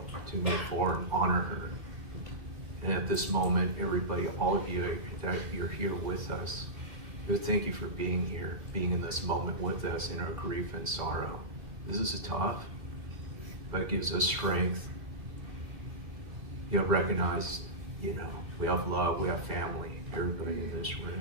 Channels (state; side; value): late; left; 2.3 ms